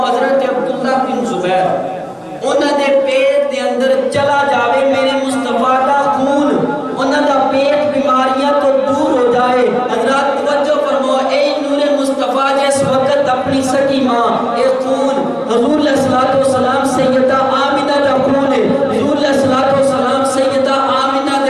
حضرت عبداللہ بن زبیر انہاں دے پیٹ دے اندر چلا جاوے میرے مصطفیٰ دا خون، انہاں دا پیٹ بیماریاں تو دور ہو جائے۔ حضرات توجہ فرماؤ، اے نور مصطفیٰ جس وقت اپنی سکی ماں اے خون حضور علیہ الصلوۃ والسلام سیدہ آمنہ دا خون ہے، حضور علیہ الصلوۃ والسلام سیدہ آمنہ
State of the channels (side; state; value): both; identical; correlation 1.00